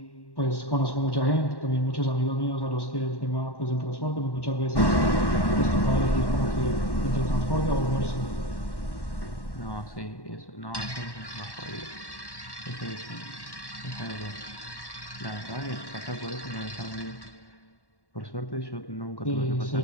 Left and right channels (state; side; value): late; right; 1.1 ms